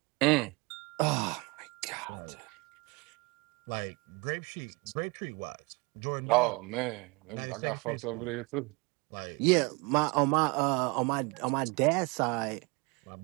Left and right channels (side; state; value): left; quieter; 27.7 dB